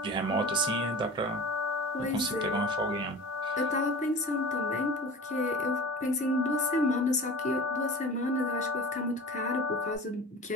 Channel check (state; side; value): normal; both; correlation 0.37